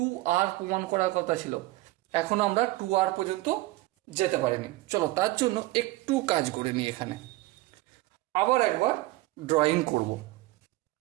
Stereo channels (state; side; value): quieter; left; 18.4 dB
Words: প্রমাণ করার কথা ছিল। এখন আমরা 2r পর্যন্ত যেতে পারিনি, চলো তার জন্য একটু কাজ করে নিই। এখানে আবার একবার ড্রয়িং করব,